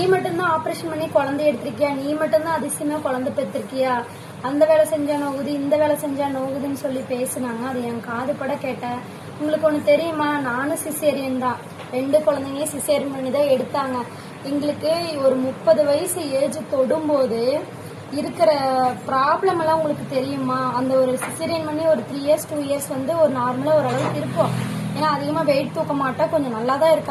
மட்டும்தான் ஆப்ரேஷன் பண்ணி குழந்தை எடுத்திருக்கியா, நீ மட்டும்தான் அதிசயமா குழந்தை பெற்றிருக்கியா, அந்த வேலை செஞ்சா நோகுது இந்த வேலை செஞ்சா நோகுதுன்னு சொல்லி பேசுனாங்க. அது என் காதுபட கேட்டேன். உங்களுக்கு ஒன்று தெரியுமா, நானும் சிசேரியன் தான். 2 குழந்தைங்க சிசேரியன் பண்ணி தான் எடுத்தாங்க. எங்களுக்கு ஒரு 30 வயசு ஏஜ் தொடும்போது இருக்கிற ப்ராப்ளம் எல்லாம் உங்களுக்கு தெரியுமா? அந்த ஒரு சிசேரியன் பண்ணி ஒரு 3 இயர்ஸ் 2 இயர்ஸ் வந்து ஒரு நார்மலாக ஓரளவுக்கு இருப்போம். ஏன்னா அதிகமாக வெயிட் தூக்க மாட்டா, கொஞ்சம் நல்லா தான்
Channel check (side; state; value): both; identical; correlation 1.00